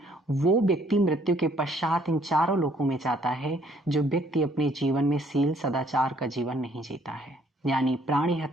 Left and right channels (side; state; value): both; normal; correlation 0.64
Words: वो व्यक्ति मृत्यु के पश्चात इन 4 लोकों में जाता है जो व्यक्ति अपने जीवन में शील सदाचार का जीवन नहीं जीता है, यानी प्राणी